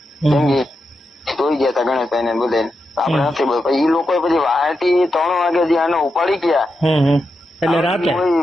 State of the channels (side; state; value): both; normal; correlation 0.87